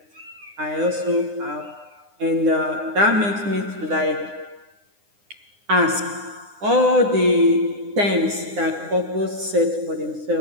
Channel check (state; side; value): late; left; 9.8 ms